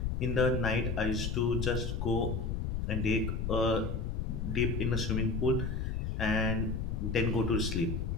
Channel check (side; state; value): left; noise; rumble, 1 dB below the sound